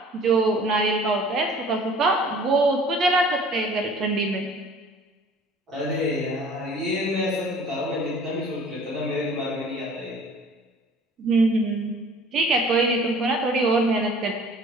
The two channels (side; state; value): both; normal; correlation 0.50